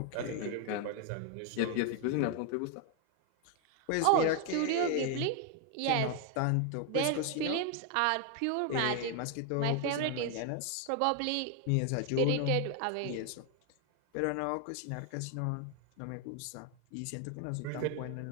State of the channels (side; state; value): both; different; correlation 0.01